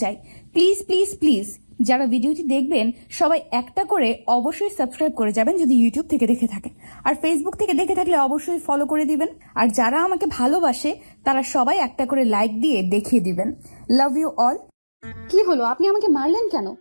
চাই, প্লিজ প্লিজ প্লিজ যারা ভিডিওটি দেখবেন সবাই একটা করে অবশ্যই সাবস্ক্রাইব করে যাবেন যদি ইউটিউব থেকে দেখে থাকেন, আর ফেসবুক থেকে দেখে থাকলে অবশ্যই ফলো করে দিবেন। আর যারা আমাকে ভালোবাসে তারা সবাই একটা করে লাইক দিয়ে দেখিয়ে দিবেন। Love you all. কি হলো, আপনি আমাকে মারলেন কেন?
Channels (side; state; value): both; inverted; correlation -1.00